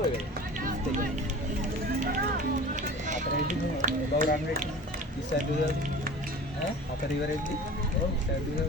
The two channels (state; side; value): normal; both; correlation 0.39